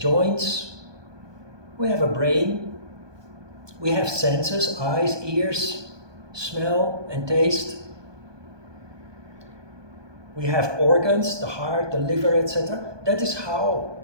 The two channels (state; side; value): late; left; 1.2 ms